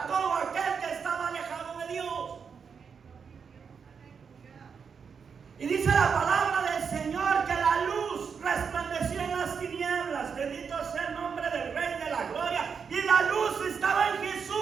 todo aquel que estaba alejado de Dios. Y dice la palabra del Señor que la luz resplandeció en las tinieblas. Bendito sea el nombre del Rey de la Gloria. Y la luz estaba en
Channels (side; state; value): left; quieter; 6.2 dB